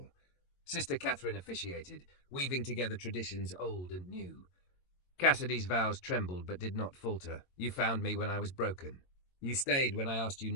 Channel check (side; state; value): right; late; 22 ms